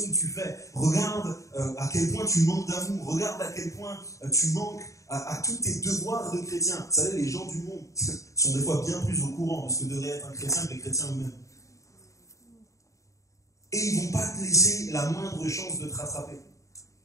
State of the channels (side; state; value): right; late; 0.16 ms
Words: que tu fais, regarde à quel point tu manques d'amour, regarde à quel point tu manques à tous tes devoirs de chrétien. Vous savez, les gens du monde sont des fois bien plus au courant de ce que devrait être un chrétien que les chrétiens eux-mêmes. Et ils ne vont pas te laisser la moindre chance de te rattraper.